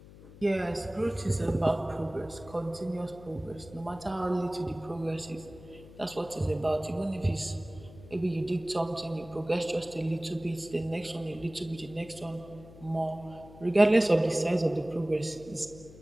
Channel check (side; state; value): left; noise; hum, 19 dB below the sound